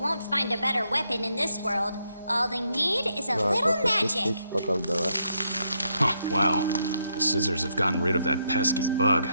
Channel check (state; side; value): inverted; both; correlation -0.78